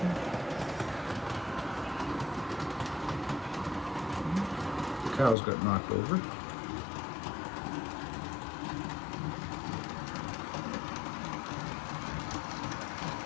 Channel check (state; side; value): drops out; right; at 5.4 s